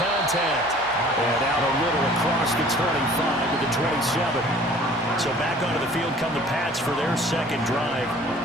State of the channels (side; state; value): both; normal; correlation 0.50